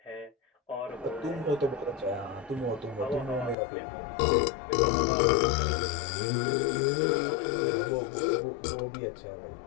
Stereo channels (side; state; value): right; drops out; at 3.6 s